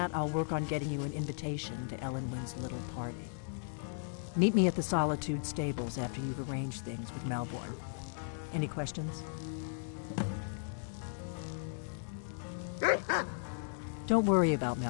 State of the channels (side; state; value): right; silent; digital silence